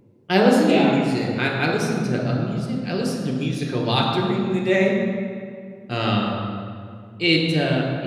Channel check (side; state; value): both; identical; correlation 1.00